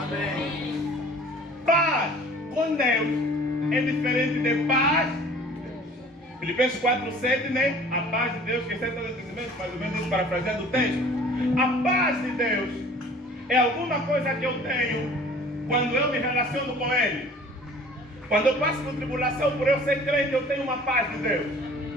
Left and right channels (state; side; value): normal; both; correlation 0.49